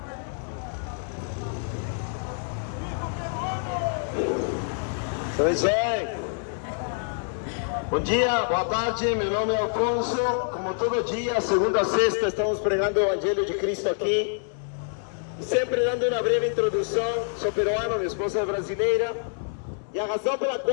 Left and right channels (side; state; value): right; silent; digital silence